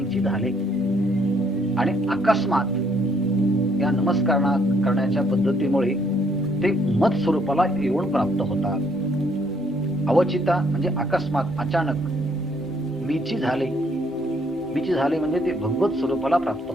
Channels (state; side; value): normal; both; correlation 0.67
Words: झाले. आणि अकस्मात या नमस्कार करण्याच्या पद्धतीमुळे ते मत स्वरूपाला येऊन प्राप्त होतात. अवचिता म्हणजे अकस्मात, अचानक. मीची झाले म्हणजे ते भगवत स्वरूपाला प्राप्त